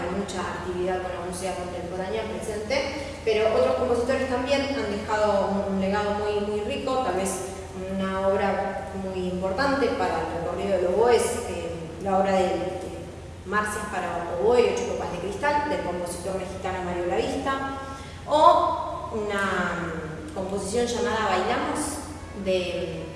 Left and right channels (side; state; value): both; identical; correlation 1.00